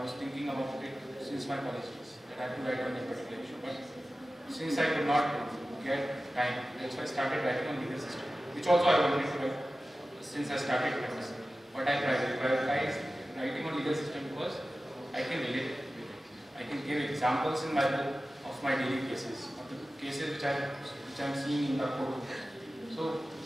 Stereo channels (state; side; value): normal; both; correlation 0.95